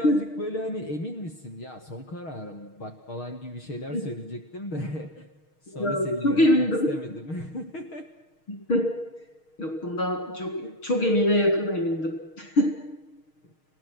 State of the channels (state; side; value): late; right; 6.4 ms